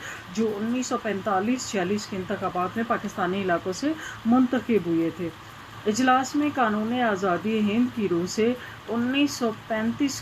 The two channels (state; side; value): identical; both; correlation 1.00